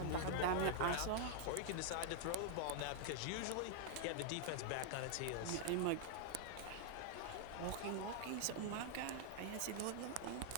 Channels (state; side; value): different; both; correlation -0.01